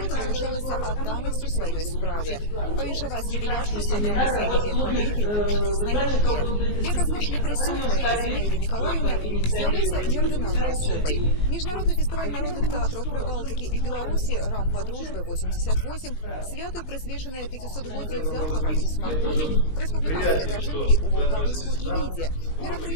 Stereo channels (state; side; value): late; right; 19 ms